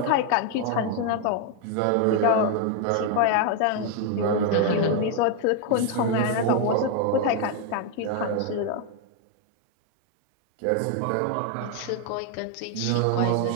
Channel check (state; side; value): different; both; correlation 0.01